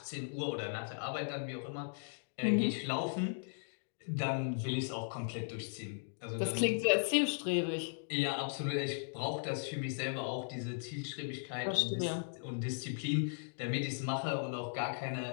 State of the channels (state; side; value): silent; right; digital silence